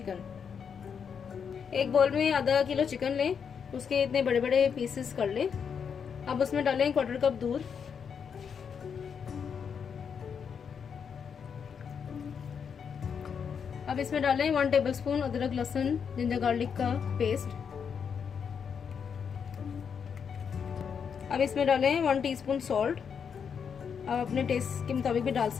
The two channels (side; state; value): right; quieter; 6.9 dB